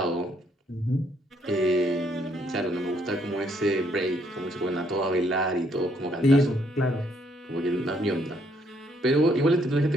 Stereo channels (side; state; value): both; normal; correlation 0.70